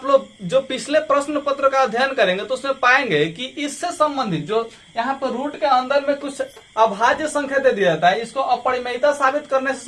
लोग जो पिछले प्रश्न पत्र का अध्ययन करेंगे तो उसमें पाएंगे कि इससे संबंधित जो यहाँ पर रूट के अंदर में कुछ अभाज्य संख्या दे दिया जाता है, इसको अपरिमेयता साबित करने से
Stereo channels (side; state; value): both; identical; correlation 1.00